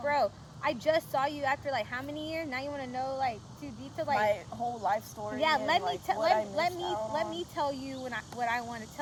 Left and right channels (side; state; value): both; identical; correlation 1.00